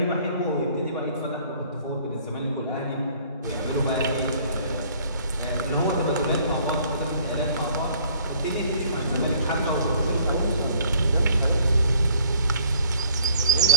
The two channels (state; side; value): inverted; both; correlation -0.57